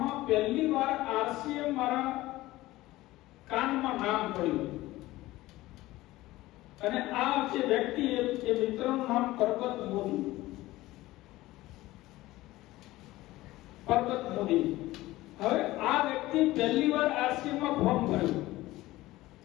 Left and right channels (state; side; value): quieter; right; 17.7 dB